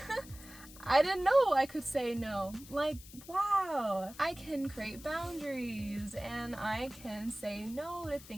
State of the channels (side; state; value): left; noise; hiss, 18 dB below the sound